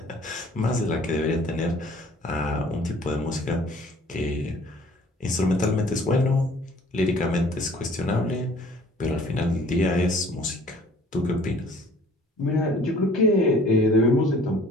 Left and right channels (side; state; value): both; normal; correlation 0.53